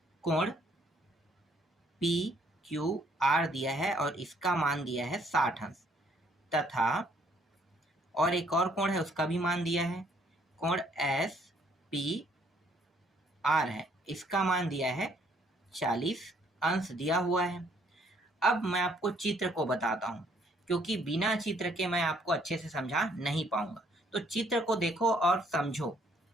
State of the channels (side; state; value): both; normal; correlation 0.65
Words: कोण पी क्यू आर दिया है और इसका मान दिया है 60 अंश तथा और एक और कोण है उसका भी मान दिया है, कोण एस पी आर है, इसका मान दिया है 40 अंश दिया हुआ है। अब मैं आपको चित्र को बताता हूं, क्योंकि बिना चित्र के मैं आपको अच्छे से समझा नहीं पाऊंगा। तो चित्र को देखो और समझो।